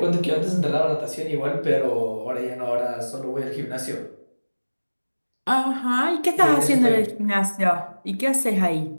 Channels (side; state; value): both; inverted; correlation -1.00